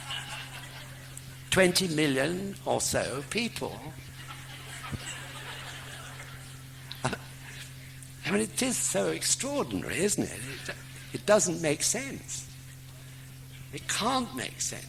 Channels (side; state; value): both; identical; correlation 1.00